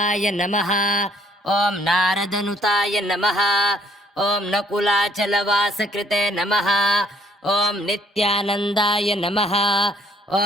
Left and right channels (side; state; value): both; normal; correlation 0.62